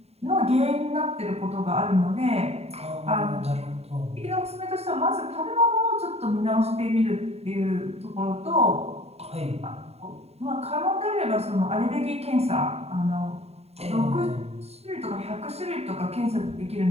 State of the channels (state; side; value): late; left; 0.30 ms